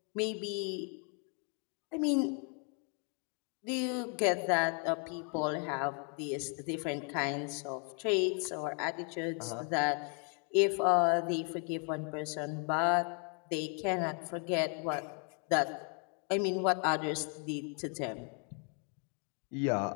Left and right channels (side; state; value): right; quieter; 39.0 dB